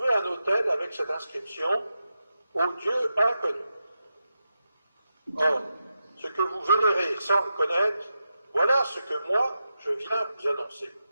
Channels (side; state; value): both; inverted; correlation -0.88